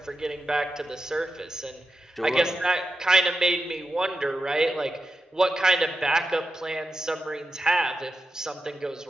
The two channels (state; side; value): normal; both; correlation 0.90